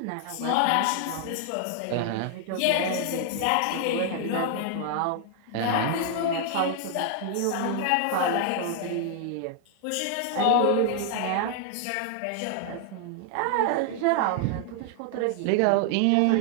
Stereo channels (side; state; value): both; different; correlation 0.00